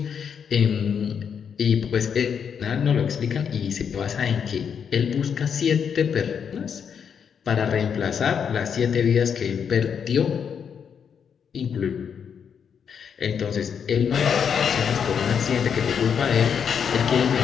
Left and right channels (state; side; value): quieter; right; 7.3 dB